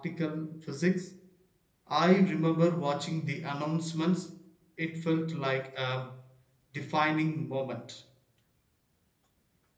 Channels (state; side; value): identical; both; correlation 1.00